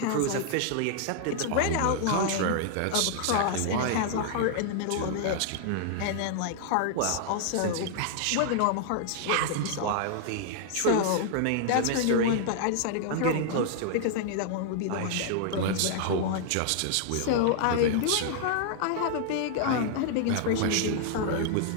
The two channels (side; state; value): both; different; correlation 0.00